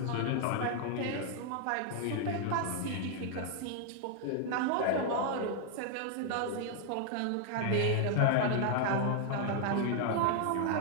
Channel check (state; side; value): different; both; correlation 0.00